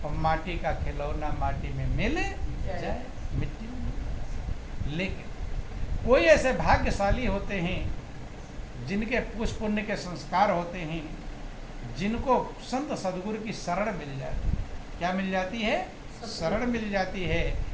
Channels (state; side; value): identical; both; correlation 1.00